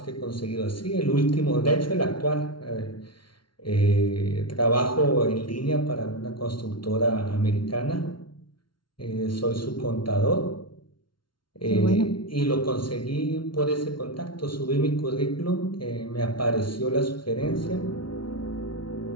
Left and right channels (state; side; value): late; right; 0.73 ms